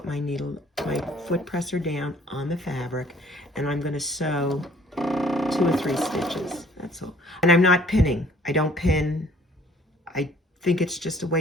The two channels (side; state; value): both; normal; correlation 0.57